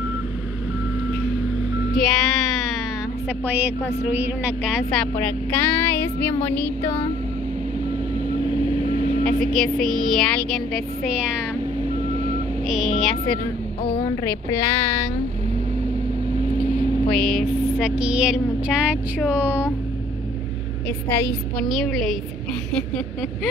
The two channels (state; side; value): normal; both; correlation 0.58